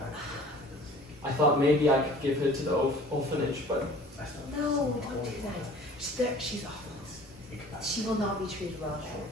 I thought maybe I could give her to the orphanage, but No, She's awful. Think about She will not be treated well it. there.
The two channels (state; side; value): normal; both; correlation 0.47